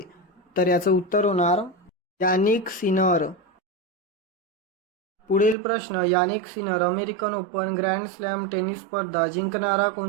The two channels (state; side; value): drops out; left; at 5.6 s